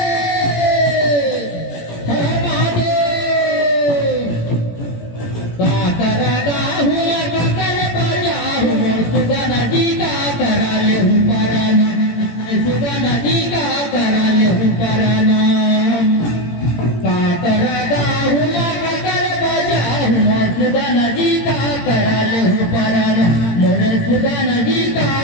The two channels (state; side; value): late; right; 18 ms